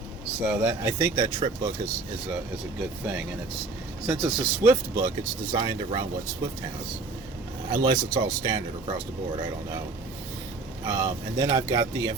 So that, I think that trip book is a good thing, and since it's a Swift book, it's designed around what Swift has, unless it's all standard across the board. I don't know. And then I've got the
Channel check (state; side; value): quieter; left; 3.7 dB